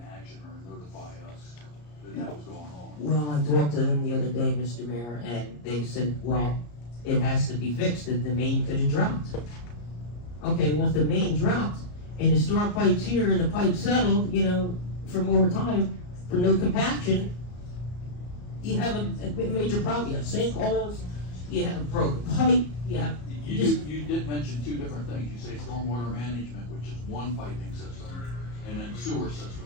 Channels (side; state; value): right; late; 34 ms